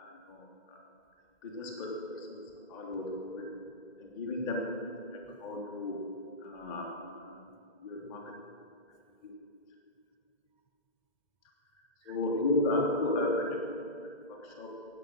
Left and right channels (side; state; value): right; late; 2.0 ms